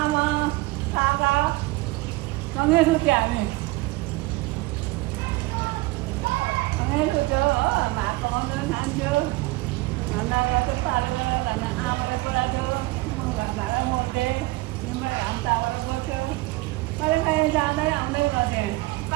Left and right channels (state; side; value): quieter; left; 21.0 dB